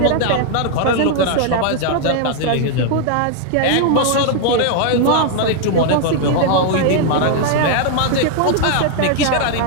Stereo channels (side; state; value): both; different; correlation 0.00